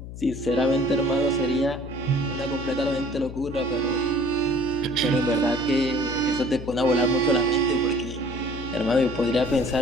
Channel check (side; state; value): left; noise; hum, 11 dB below the sound